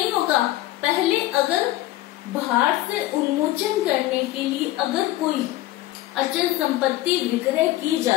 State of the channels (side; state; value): right; quieter; 16.4 dB